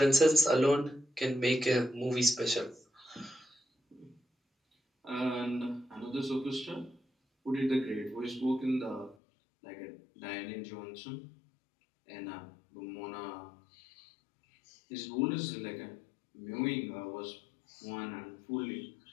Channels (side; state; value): right; drops out; at 9.2 s